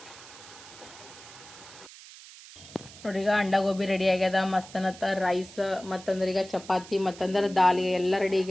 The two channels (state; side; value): noise; right; hiss, 18 dB below the sound